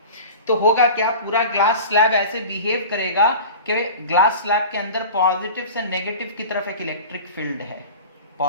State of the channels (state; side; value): inverted; both; correlation -0.36